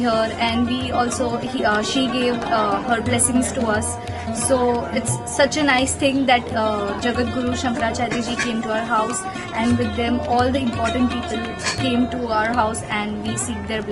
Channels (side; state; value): both; identical; correlation 1.00